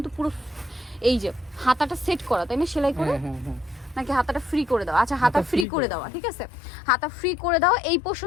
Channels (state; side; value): drops out; right; at 5.7 s